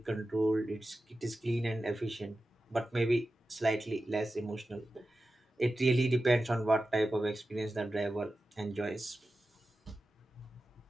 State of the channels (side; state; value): both; normal; correlation 0.93